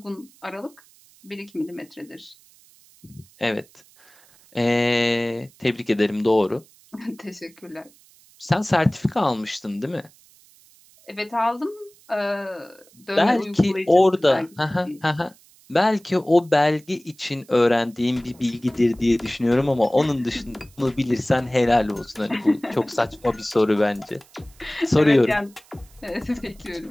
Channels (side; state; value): right; noise; hiss, 28 dB below the sound